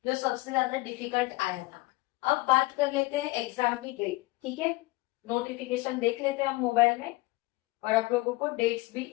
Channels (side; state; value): right; quieter; 21.6 dB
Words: जो सबसे ज्यादा डिफिकल्ट आया था। अब बात कर लेते हैं एग्जाम की डेट। ठीक है, नोटिफिकेशन देख लेते हैं हम मोबाइल में और आप लोगों को डेट्स भी